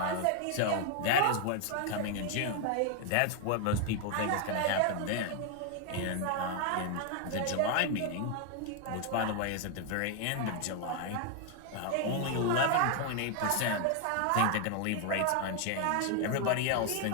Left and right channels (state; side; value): different; both; correlation 0.00